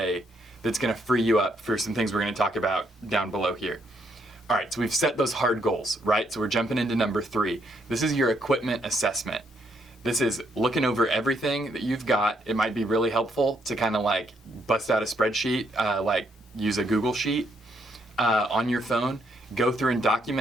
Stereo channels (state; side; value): normal; both; correlation 0.74